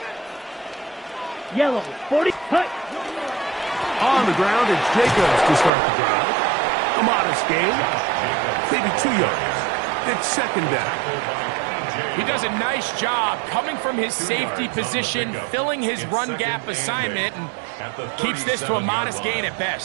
Yellow. 40. Cut. On the ground, it's Jacobs to start the drive. A modest gain. Maybe 2 yards. It's 2nd down. He does a nice job coming from his safety position, filling his run gap assignment, and keeps this to a modest gain at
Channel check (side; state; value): left; drops out; at 5.7 s